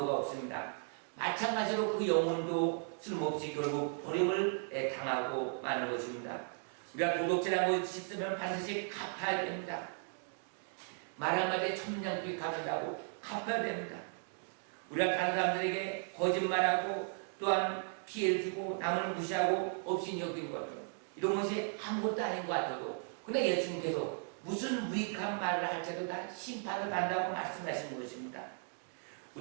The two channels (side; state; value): left; silent; 54 dB below the other